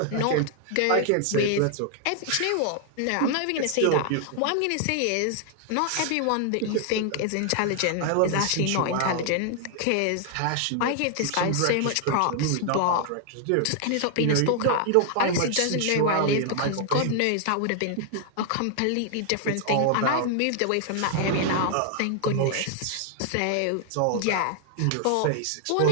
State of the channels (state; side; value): different; both; correlation 0.00